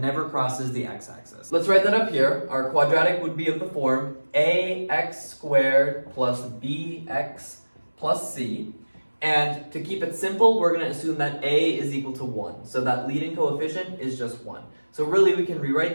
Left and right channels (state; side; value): inverted; both; correlation -1.00